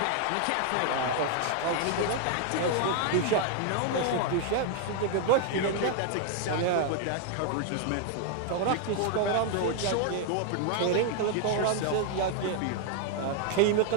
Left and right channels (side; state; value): both; different; correlation 0.00